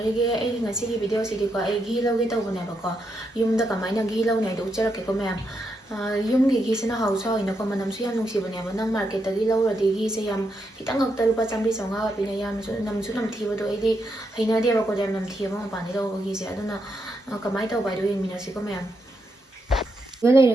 ay ngasigi video sidiko ay ghee lawge tawbanebako yumda kamaina ghee lawne do ucharakeko ma'am yumgi ghee sina hausa hoinako manamsu yam nungsiboneba nang market tagi lawradi ghee se yam khitang ngakta lupa 100-150 pina yam namsu namthibado aidi hainadebako yam namthibama mapani lawba ghee se aduna kamai tawbai do yengminasiko ma'am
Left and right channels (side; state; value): both; normal; correlation 0.81